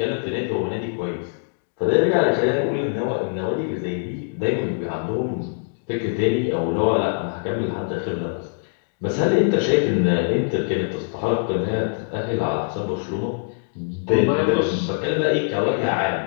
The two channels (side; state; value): right; silent; digital silence